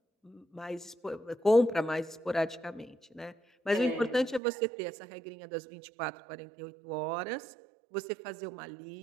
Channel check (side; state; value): left; drops out; at 4.4 s